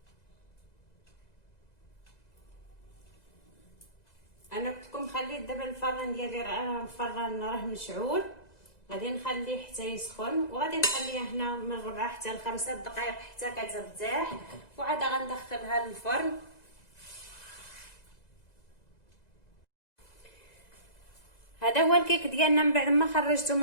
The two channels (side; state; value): right; late; 2.0 ms